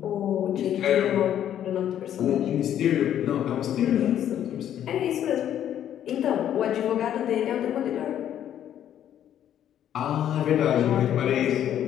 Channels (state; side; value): quieter; right; 10.6 dB